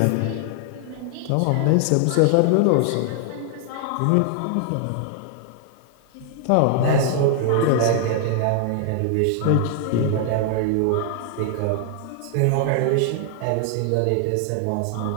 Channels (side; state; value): both; different; correlation 0.00